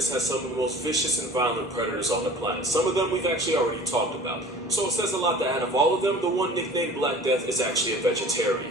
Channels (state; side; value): normal; both; correlation 0.43